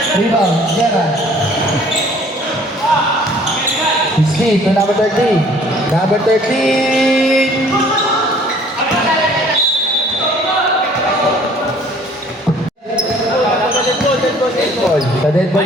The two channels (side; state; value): both; normal; correlation 0.55